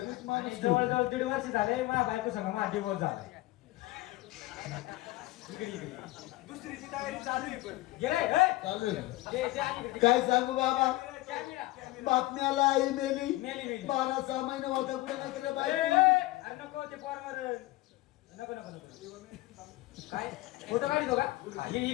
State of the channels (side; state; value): right; quieter; 18.8 dB